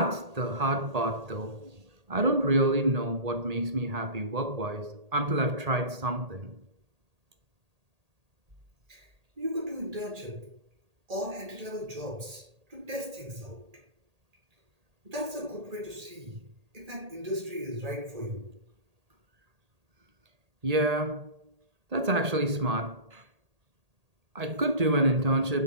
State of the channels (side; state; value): left; late; 1.8 ms